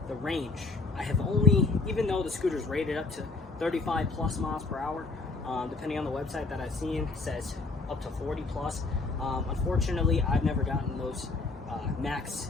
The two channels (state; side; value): quieter; right; 3.7 dB